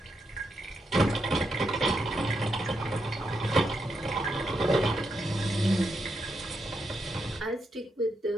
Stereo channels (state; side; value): normal; both; correlation 0.82